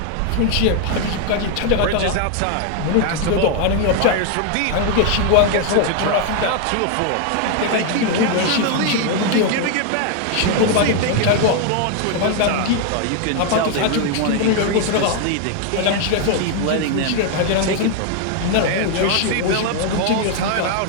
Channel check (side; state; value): both; different; correlation 0.00